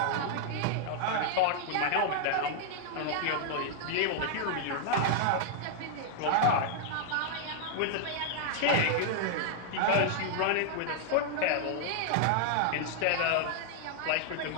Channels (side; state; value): both; different; correlation 0.00